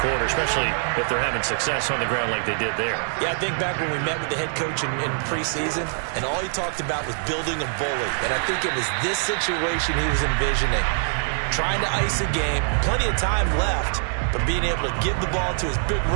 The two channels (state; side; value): silent; left; 63 dB below the other